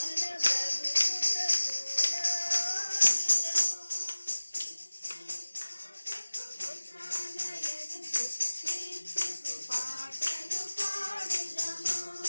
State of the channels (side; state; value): both; inverted; correlation -1.00